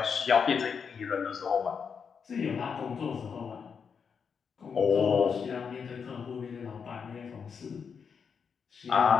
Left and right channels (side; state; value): right; quieter; 6.3 dB